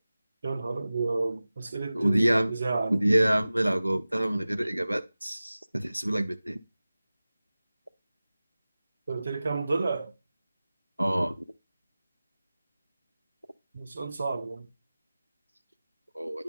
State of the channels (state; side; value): inverted; both; correlation -0.96